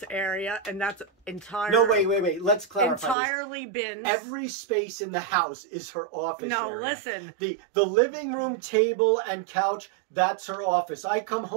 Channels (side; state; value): left; drops out; at 3.2 s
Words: area, and that's entirely. No, wait. Let's clarify. Entirely bins. Every space in the house is her office. No, area. Listen. The living room, table, and couch. That's her office. I come